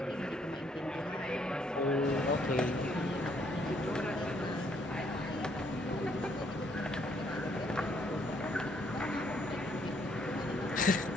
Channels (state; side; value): normal; both; correlation 0.69